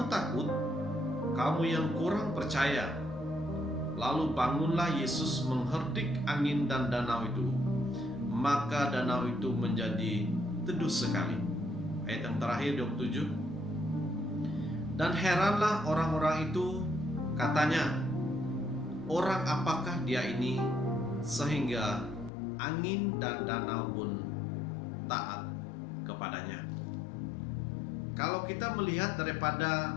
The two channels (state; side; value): drops out; right; at 22.3 s